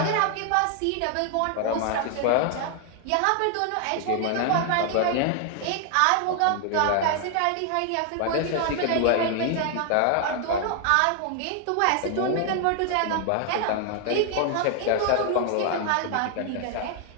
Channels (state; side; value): different; both; correlation 0.00